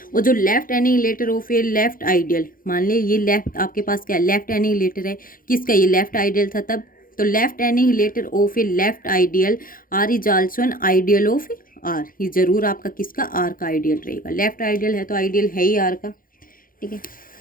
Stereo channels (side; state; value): right; late; 0.41 ms